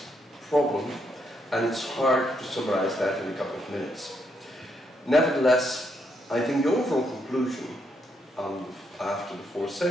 problem, and it's hard to summarize that in a couple of minutes. Nevertheless, I think the overall conclusion after the 4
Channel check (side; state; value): both; normal; correlation 0.77